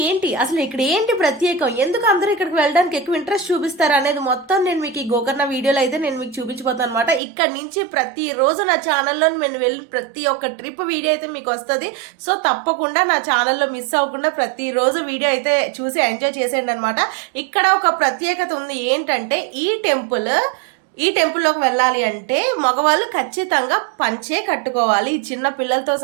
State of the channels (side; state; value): left; drops out; at 7.2 s